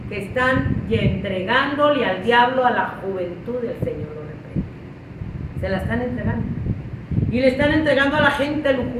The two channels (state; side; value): identical; both; correlation 1.00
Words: que están entregándole al diablo a la juventud del Señor lo reprende. Se la están entregando. Y le están entregando a la gente